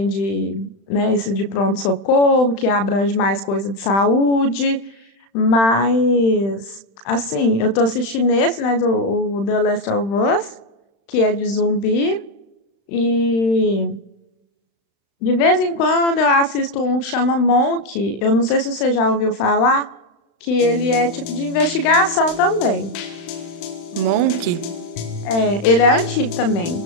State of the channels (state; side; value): late; right; 35 ms